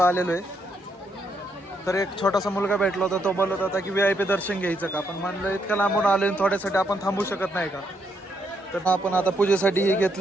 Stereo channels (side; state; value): both; normal; correlation 0.76